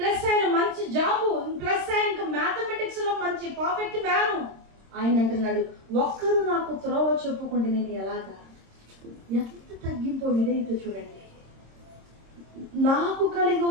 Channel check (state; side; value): late; left; 26 ms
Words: ఆయన మంచి జాబు, ప్లస్ ఆయన మ్యాథమెటిక్స్ లో మంచి పర్ఫెక్ట్ మ్యాను. ఆయన అంటున్నాడు, ఒక్కరు నాకు త్రోవ చూపుకుంటే నేను ఎలాగా? ఎంత తగ్గింపో విధేయత చూడండి. నాకు కలిగి